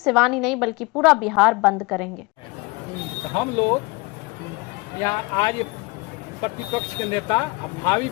ही नहीं बल्कि पूरा बिहार बंद करेंगे। हम लोग यहाँ आज प्रतिपक्ष के नेता भावी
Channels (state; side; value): quieter; right; 25.8 dB